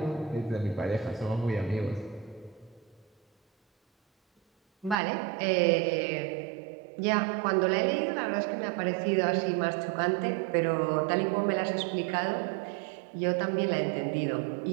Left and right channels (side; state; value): left; drops out; at 5.0 s